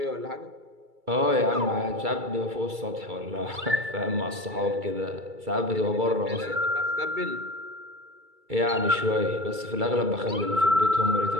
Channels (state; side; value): late; left; 2.3 ms